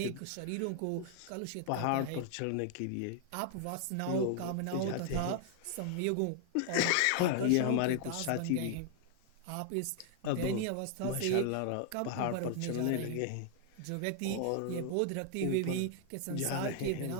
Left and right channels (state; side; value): different; both; correlation 0.00